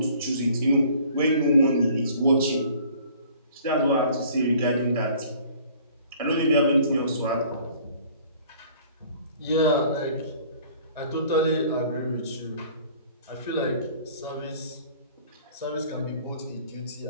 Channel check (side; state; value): both; inverted; correlation -0.53